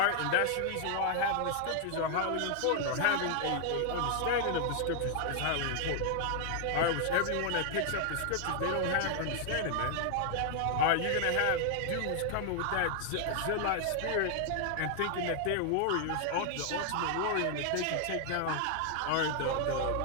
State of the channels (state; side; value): different; both; correlation 0.00